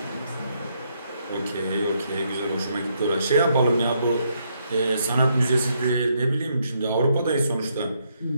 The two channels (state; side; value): inverted; both; correlation -0.75